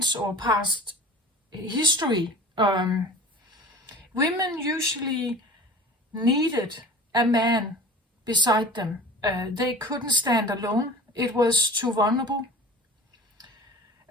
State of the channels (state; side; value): normal; both; correlation 0.39